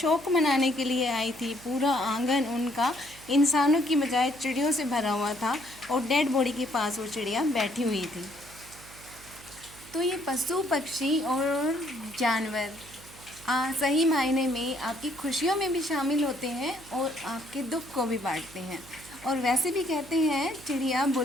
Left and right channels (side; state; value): right; noise; hum, 21 dB below the sound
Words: मनाने के लिए आई थी। पूरा आंगन उनका इंसानों की बजाय चिड़ियों से भरा हुआ था और डेड बॉडी के पास वो चिड़िया बैठी हुई थी। तो ये पशु पक्षी और जानवर सही मायने में आपकी खुशियों में भी शामिल होते हैं और आपके दुख को भी बांटते हैं। और वैसे भी कहते हैं चिड़िया